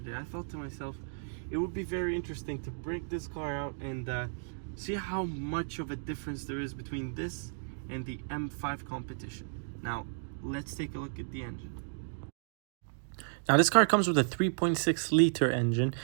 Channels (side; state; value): left; silent; digital silence